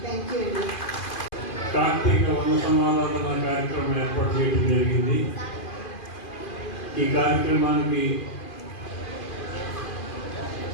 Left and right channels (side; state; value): right; late; 2.5 ms